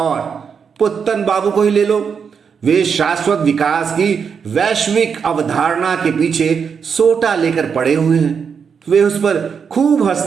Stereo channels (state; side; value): quieter; left; 6.5 dB